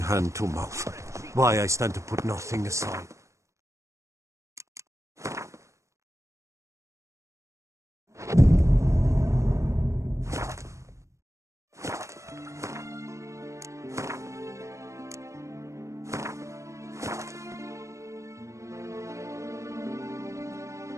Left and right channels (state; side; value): late; left; 0.15 ms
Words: to mouth. Why I stand to put nothing aside.